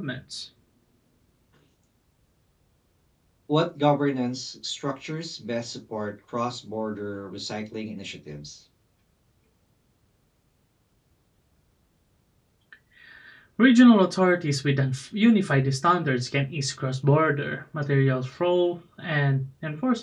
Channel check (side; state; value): both; identical; correlation 1.00